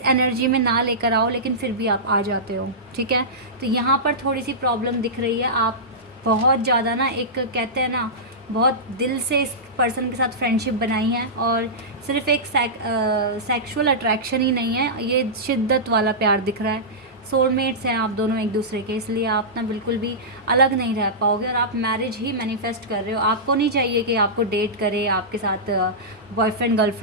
एनर्जी में ना लेकर आओ, लेकिन फिर भी आप आ जाते हो, ठीक है। तो यहाँ पर थोड़ी सी प्रॉब्लम दिख रही है। आप बहुत ज़्यादा ना, एक कहते हैं ना, बहुत दिल से इस पर्सन के साथ फ्रेंडशिप बनाई है, और सिर्फ एक सेक्सुअल अट्रैक्शन ही नहीं है, ये शिद्दत वाला प्यार दिख रहा है। सोलमेट्स हैं आप दोनों एक दूसरे के, इसलिए आप ना बिल्कुल भी अलग नहीं रह पाओगे, और आप मैरिज ही मैनिफेस्ट कर रहे हो। आपको नहीं चाहिए कि आपको डेट करे, आपके साथ बॉयफ्रेंड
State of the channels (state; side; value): normal; both; correlation -0.15